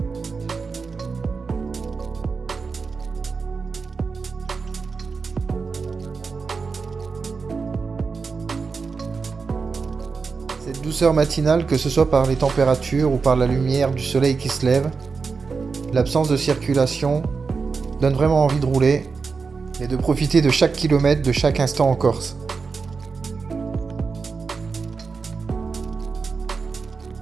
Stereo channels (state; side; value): quieter; left; 4.8 dB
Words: Cette douceur matinale, que ce soit par les températures ou par la lumière du soleil qui se lève, l'absence de circulation donne vraiment envie de rouler et de profiter de chaque kilomètre, de chaque instant en Corse.